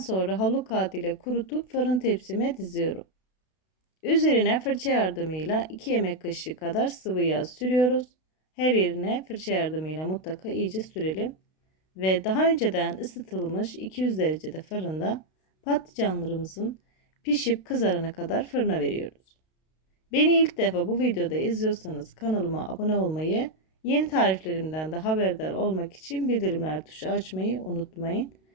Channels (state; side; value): late; right; 32 ms